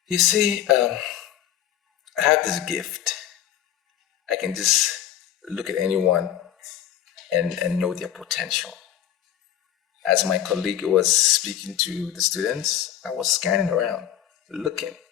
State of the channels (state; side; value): quieter; right; 11.0 dB